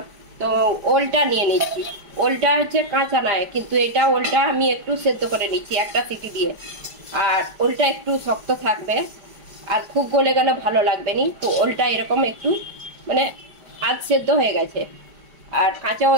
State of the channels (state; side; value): late; left; 5.0 ms